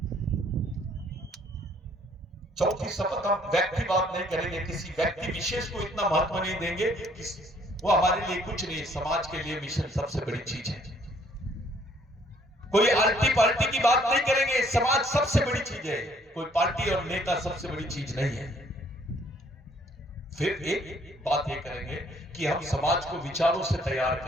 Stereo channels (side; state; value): both; normal; correlation 0.63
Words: चौथी शपथ, हम व्यक्तिवाद नहीं करेंगे। किसी व्यक्ति विशेष को इतना महत्व नहीं देंगे कि वो हमारे लिए कुछ नहीं, समाज के लिए मिशन सबसे बड़ी चीज है। कोई आल्टी पार्टी की बात नहीं करेंगे। समाज सबसे बड़ी चीज है, कोई पार्टी और नेता सबसे बड़ी चीज नहीं है। फिर एक बात ये करेंगे कि हम समाज को विचारों से तैयार